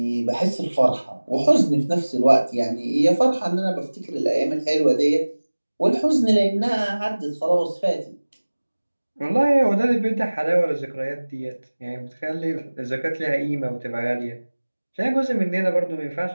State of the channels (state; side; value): inverted; both; correlation -1.00